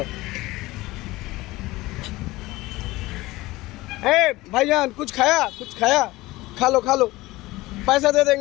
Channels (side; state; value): right; quieter; 19.4 dB